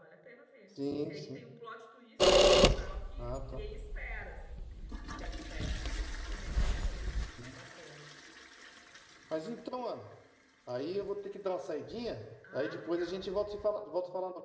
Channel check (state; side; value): identical; both; correlation 1.00